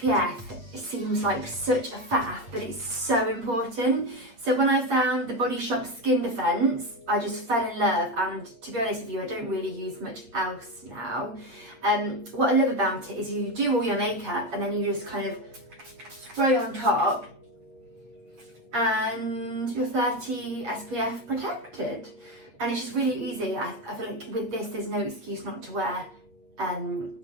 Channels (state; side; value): late; left; 8.5 ms